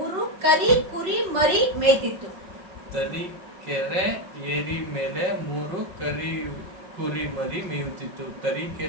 ಕರಿ ಕುರಿ ಮರಿ ಮೇಯ್ತಿತ್ತು. ತರೀಕೆರೆ ಏರಿ ಮೇಲೆ 3 ಕರಿ ಕುರಿ ಮರಿ ಮೇಯುತ್ತಿತ್ತು.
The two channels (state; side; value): late; left; 5.3 ms